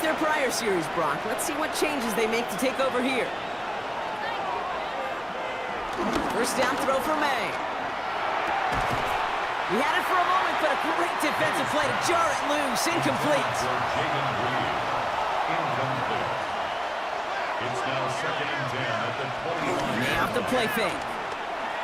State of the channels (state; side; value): identical; both; correlation 1.00